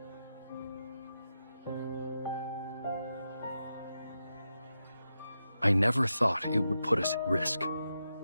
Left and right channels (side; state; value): both; inverted; correlation -0.88